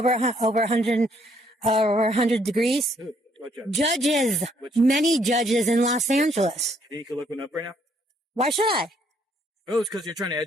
100 degrees, What judge? judges, many judges in Los Angeles. You can look one up right now. Why should I? Oh, it's because you're trying to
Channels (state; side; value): normal; both; correlation 0.67